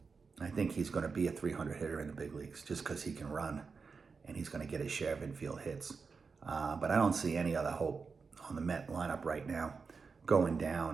I think he's going to be a 300 hitter in the big leagues just because he can run, and he's going to get his share of infield hits. But I don't see any other hope on the Met lineup right now going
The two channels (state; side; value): quieter; left; 5.0 dB